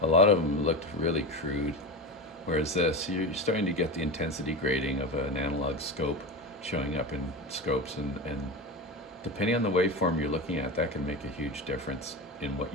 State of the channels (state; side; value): normal; both; correlation 0.23